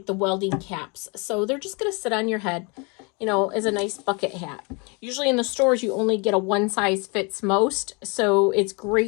the welding caps. So they're just going to sit on your head, you know, as a nice bucket hat. Usually in the stores, you only get a one size fits most. So it's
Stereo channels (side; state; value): right; quieter; 31.4 dB